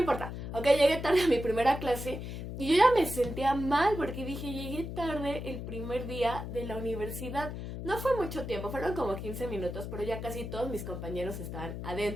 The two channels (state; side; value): noise; left; hum, 7 dB below the sound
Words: Ok, llegué tarde a mi primera clase y yo ya me sentía mal porque dije, llegué tarde el primer día de la universidad. No fue mucho tiempo, fueron como 15 minutos, pero ya casi todos mis compañeros estaban